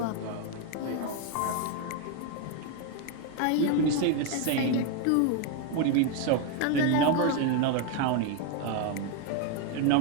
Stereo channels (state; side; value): different; both; correlation 0.01